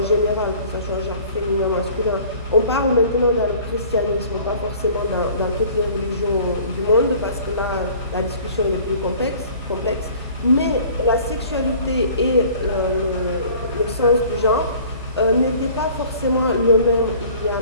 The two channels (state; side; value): inverted; both; correlation -0.50